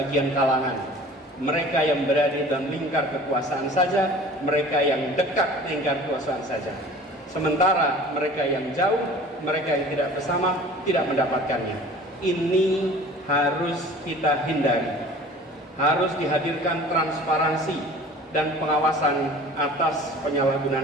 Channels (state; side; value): normal; both; correlation 0.44